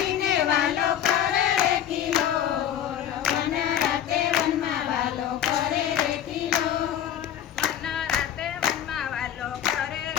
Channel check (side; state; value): right; quieter; 10.2 dB